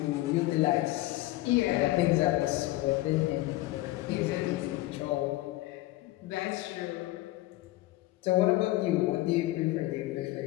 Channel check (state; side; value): quieter; right; 17.7 dB